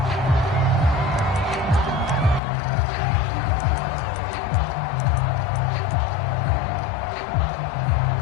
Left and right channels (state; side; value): drops out; right; at 2.4 s